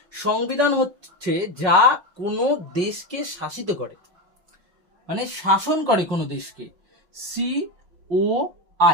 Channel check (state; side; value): late; left; 5.4 ms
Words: সংবিধান হচ্ছে যা কোনো দেশকে শাসিত করে, মানে শাসন করে কোনো দেশকে।